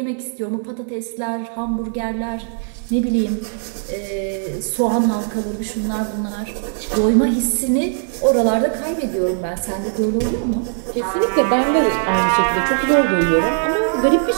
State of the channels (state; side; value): silent; left; 66 dB below the other